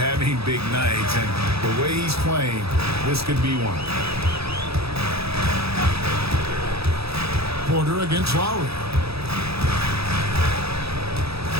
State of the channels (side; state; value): left; late; 0.77 ms